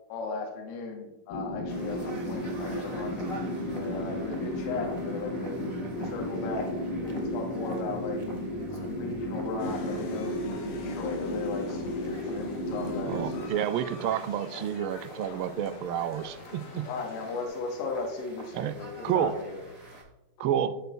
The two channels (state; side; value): late; right; 22 ms